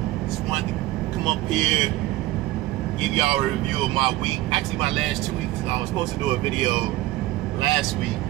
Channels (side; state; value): left; quieter; 17.2 dB